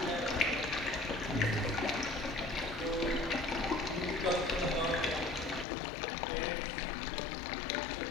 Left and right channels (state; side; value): drops out; right; at 5.7 s